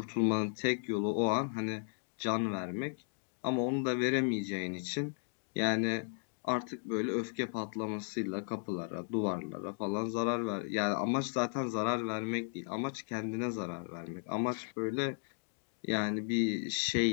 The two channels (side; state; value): right; silent; digital silence